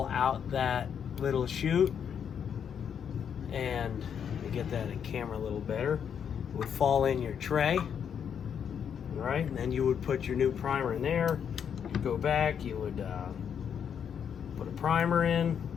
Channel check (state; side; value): quieter; right; 7.9 dB